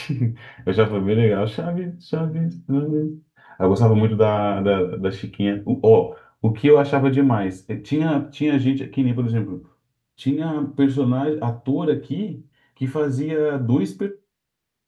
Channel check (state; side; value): identical; both; correlation 1.00